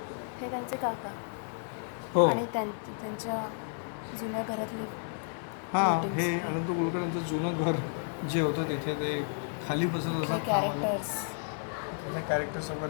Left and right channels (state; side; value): silent; right; 56 dB below the other